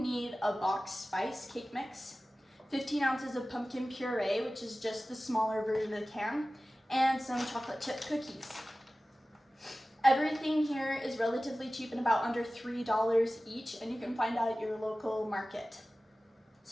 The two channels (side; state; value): both; normal; correlation 0.96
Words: a box spice cake mix, 15 ounces of pumpkin puree, which is just the smaller version of the can, and some chocolate chip cookies. Everything here is relatively cheap and about under $3 each, and you can find out at your local market.